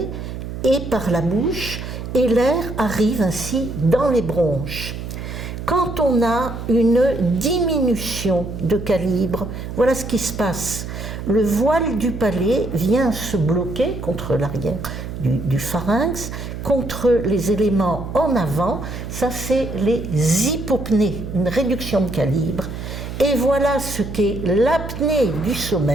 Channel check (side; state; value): right; noise; hum, 8 dB below the sound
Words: et par la bouche, et l'air arrive ainsi dans les bronches. Quand on a une diminution de calibre, voilà ce qui se passe. Le voile du palais vient se bloquer contre l'arrière du pharynx, contre les éléments en avant, ça c'est les hypopnées, une réduction de calibre. Et voilà ce qu'est l'apnée du